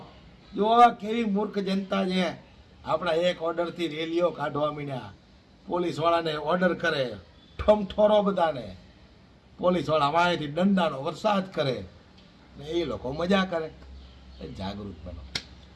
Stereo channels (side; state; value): both; identical; correlation 1.00